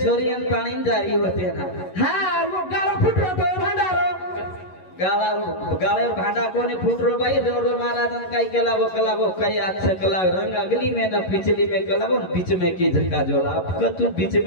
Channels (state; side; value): late; right; 11 ms